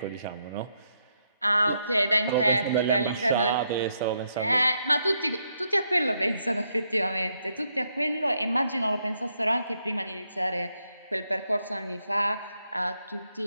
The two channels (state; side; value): inverted; both; correlation -0.78